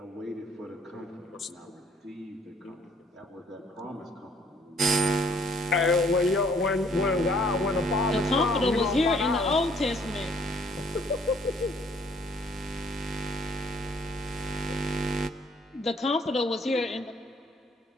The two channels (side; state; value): both; normal; correlation 0.62